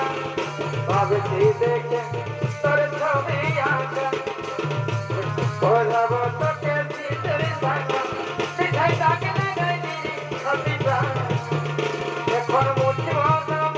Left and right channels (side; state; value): both; identical; correlation 1.00